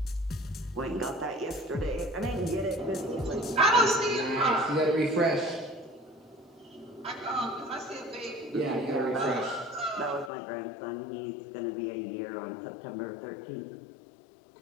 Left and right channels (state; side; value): drops out; right; at 10.3 s